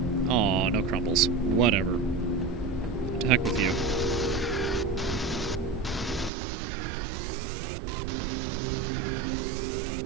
Aw, no crumbles. Whatever. To heck with you.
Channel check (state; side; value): drops out; left; at 6.3 s